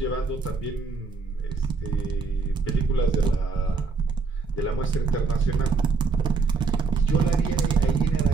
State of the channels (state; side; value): quieter; left; 4.6 dB